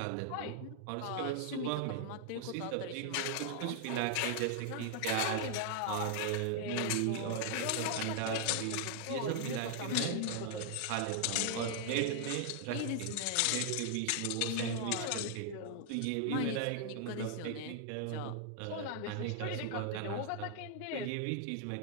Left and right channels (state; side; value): different; both; correlation 0.00